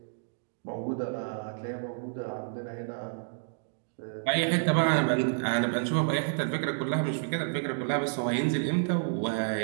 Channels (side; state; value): left; silent; digital silence